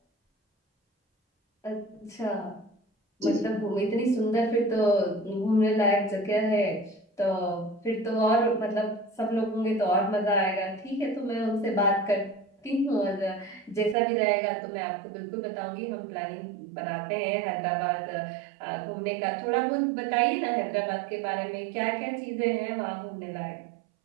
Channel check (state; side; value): drops out; left; at 14.0 s